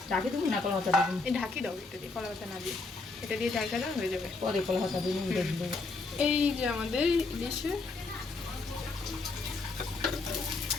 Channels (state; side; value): quieter; right; 3.7 dB